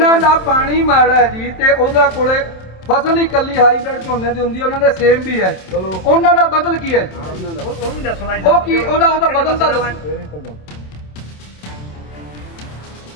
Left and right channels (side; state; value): right; late; 27 ms